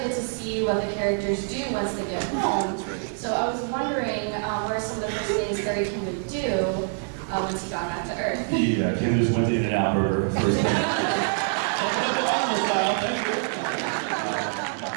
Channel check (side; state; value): left; silent; 59 dB below the other